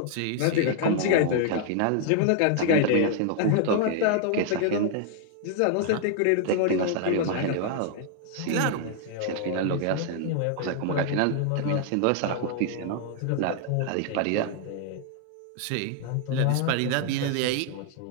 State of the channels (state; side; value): different; both; correlation 0.00